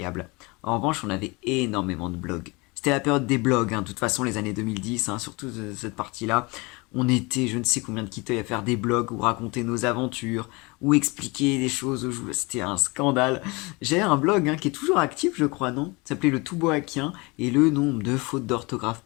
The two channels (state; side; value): quieter; right; 26.2 dB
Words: En revanche, on avait énormément de blogs. C'était la période des blogs, hein, de toute façon les années 2010, hein, surtout cette partie-là. On était je ne sais combien de Kitoy à faire des blogs où raconter nos aventures, ou expliquer des choses aux joueurs. C'était un scandale. J'ai un blog qui est toujours actif, je crois, non? Ça s'appelait le Tout Boakien, et le nombre de fautes d'orthographe